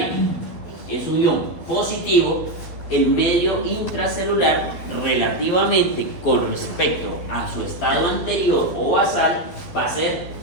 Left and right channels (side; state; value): right; late; 12 ms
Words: es un ion positivo, el medio intracelular, relativamente con respecto a su estado anterior o basal, va a ser